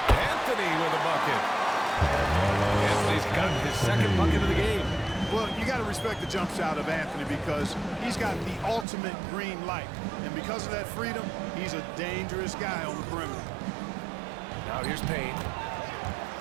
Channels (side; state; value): left; drops out; at 8.8 s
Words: Anthony with a bucket. Anthony's got his second bucket of the game. Well, you got to respect the jump shot of Anthony because he's got the ultimate green light. And because of that freedom, he's a dangerous guy on the perimeter. Now here's Payne.